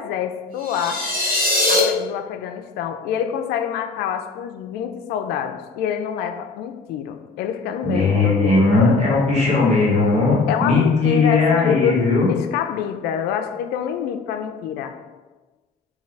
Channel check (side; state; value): right; quieter; 4.0 dB